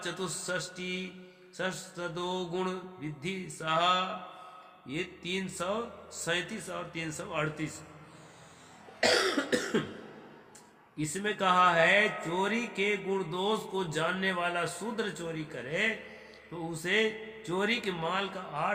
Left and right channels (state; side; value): identical; both; correlation 1.00